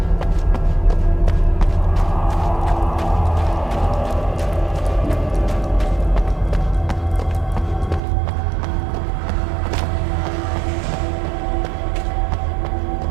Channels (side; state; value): left; drops out; at 8.0 s